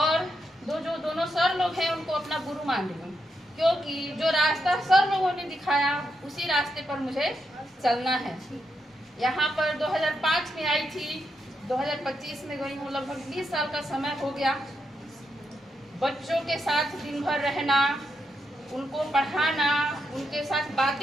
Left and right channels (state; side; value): normal; both; correlation 0.82